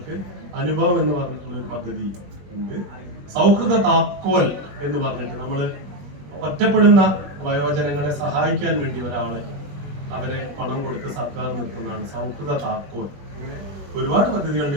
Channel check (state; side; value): late; left; 21 ms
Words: അനുഭവം എന്ന് പറഞ്ഞിട്ടുള്ള ഒരു പദ്ധതി ഉണ്ട്. സൗഹൃദ താക്കോൽ എന്ന് പറഞ്ഞിട്ട് നമ്മൾ ഒറ്റപ്പെടുന്ന വയോജനങ്ങളെ സഹായിക്കാൻ വേണ്ടി ഒരാളെ അവരെ പണം കൊടുത്ത് സർക്കാർ നിർത്തുന്നതാണ് സൗഹൃദ താക്കോൽ. ഒരുപാട് പദ്ധതികളുണ്ട്,